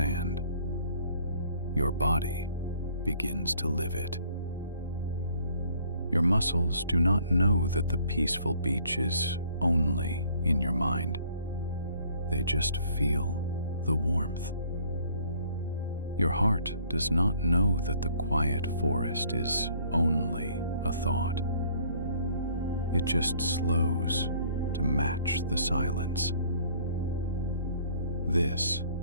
your body begins to live it. Your muscles do not know that the peaceful beach is only in your mind. They just feel the warmth. Your heart does not know that the quiet forest is only a thought. It just slows to match the silence. This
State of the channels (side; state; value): both; inverted; correlation -0.59